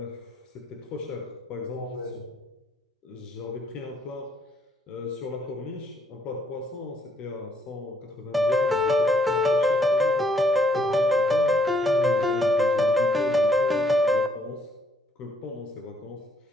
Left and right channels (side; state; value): both; normal; correlation 0.70